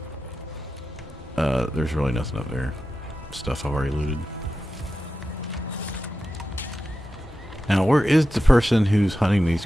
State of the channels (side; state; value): both; normal; correlation 0.92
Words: There's really nothing up there. Stuff I've already looted. Now, where is the person who's hunting these